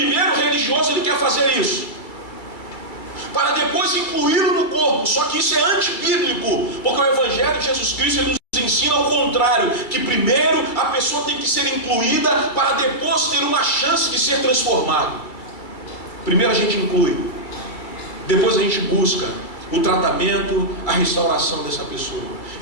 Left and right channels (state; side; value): late; right; 2.2 ms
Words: o religioso ele quer fazer isso, para depois incluí-lo no corpo. Só que isso é antibíblico, porque o Evangelho de Jesus Cristo ele nos ensina ao contrário, que primeiro a pessoa tem que ser incluída, para depois ter uma chance de ser transformado. Primeiro a gente inclui, depois a gente busca o tratamento, a restauração dessa pessoa.